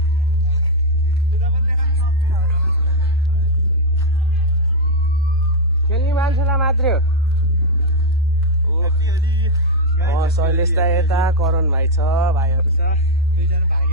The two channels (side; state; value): both; normal; correlation 0.00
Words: खेल्ने मान्छेलाई मात्रै हो शैलेश दाइ यता करण भाइ छ भाइहरू छ